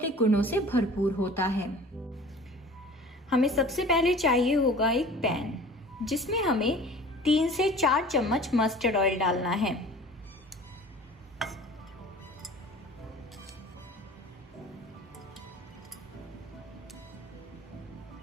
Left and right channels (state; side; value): normal; both; correlation 0.44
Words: गुणों से भरपूर होता है। हमें सबसे पहले चाहिए होगा एक पैन, जिसमें हमें 3 से 4 चम्मच मस्टर्ड ऑयल डालना है।